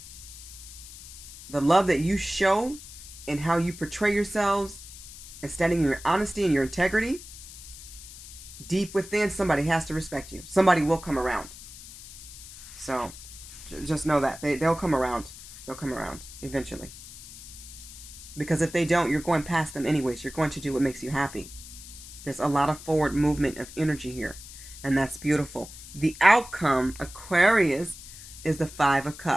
the love that you show and how you portray yourselves and standing in your honesty and your integrity, deep within, somebody has to respect you. Somebody will come around. So just know that. They'll come around. They'll come around eventually. Because if they don't, you're going past them anyways. You're going to do what makes you happy. There's a lot of forward movement of energy here. And that's beautiful. The outcome, Aquarius, is the 5 of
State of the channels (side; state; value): left; noise; hiss, 15 dB below the sound